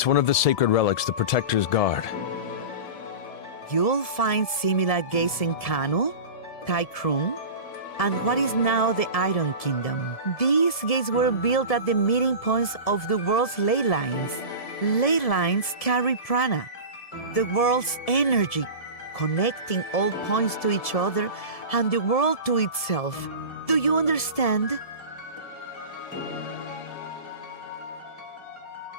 one of the sacred relics the Protectors guard. You'll find similar gates in Kanu, Taikrung, and what is now the Iron Kingdom. These gates were built at the meeting points of the world's ley lines. Ley lines carry prana, the world's energy, connecting all points to each other and the world to itself. Do you understand?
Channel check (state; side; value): late; right; 1.7 ms